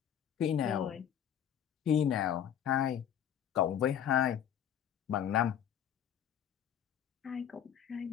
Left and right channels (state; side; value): quieter; right; 9.4 dB